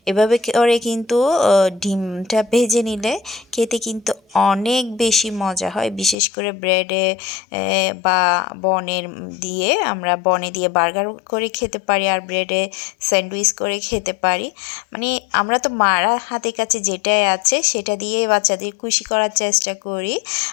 এভাবে করে কিন্তু ডিমটা ভেজে নিলে খেতে কিন্তু অনেক বেশি মজা হয়, বিশেষ করে ব্রেডে বা আমরা বনে দিয়ে বার্গার করে খেতে পারি, আর ব্রেডে স্যান্ডউইচ করে খেতে পারি। মানে আমরা তো মারা হাতের কাছে যেটাই আছে সেটা দিয়ে বাচ্চাদের খুশি করার চেষ্টা করি।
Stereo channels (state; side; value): drops out; right; at 6.2 s